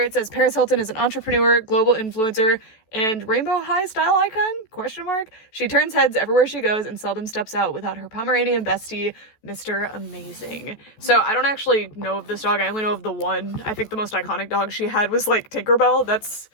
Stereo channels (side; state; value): right; late; 14 ms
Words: it says Paris Hilton is an entrepreneur, global influencer, and Rainbow High style icon, question mark. She turns heads everywhere she goes and seldom steps out without her Pomeranian bestie, Mr. Amazing. So I don't actually know of this dog. I only know of the one. I think the most iconic dog she had was like Tinkerbell. That's